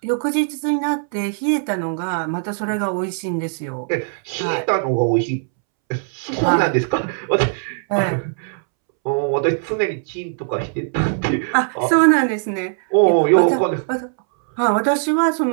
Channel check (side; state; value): left; silent; 66 dB below the other